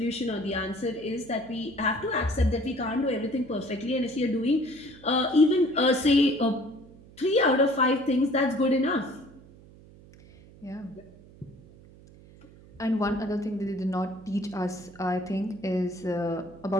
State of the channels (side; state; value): right; noise; hum, 22 dB below the sound